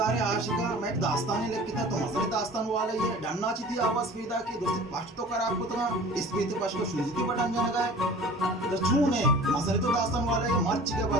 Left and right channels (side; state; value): both; normal; correlation 0.43